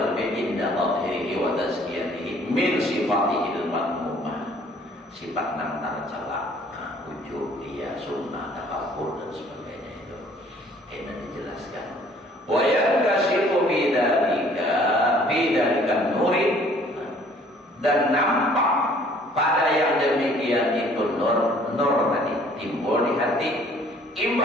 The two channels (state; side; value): normal; both; correlation 0.57